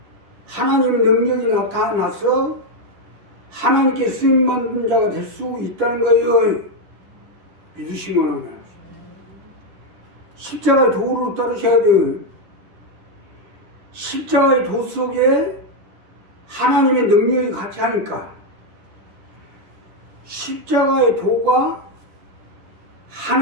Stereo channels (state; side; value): late; left; 10 ms